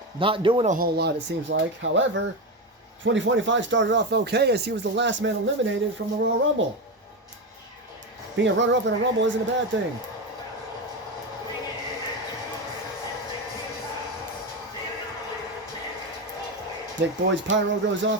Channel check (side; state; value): both; normal; correlation 0.15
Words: not doing a whole lot, it seems like. However, 2025 started off okay as he was the last man eliminated from the Royal Rumble. Being a runner-up in a Rumble isn't a bad thing. Nick Boyd's pyro goes